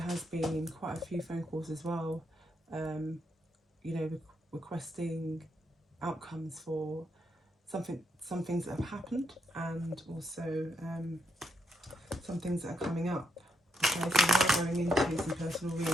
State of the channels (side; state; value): both; normal; correlation 0.77